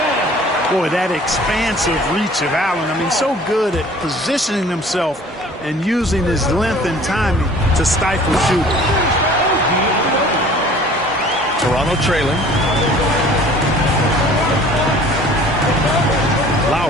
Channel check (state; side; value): normal; both; correlation 0.49